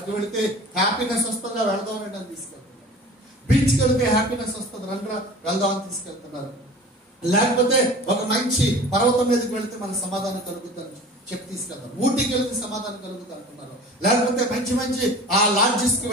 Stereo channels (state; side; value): normal; both; correlation 0.41